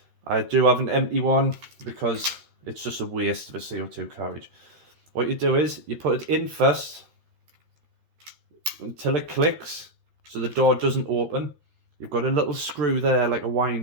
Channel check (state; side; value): late; left; 13 ms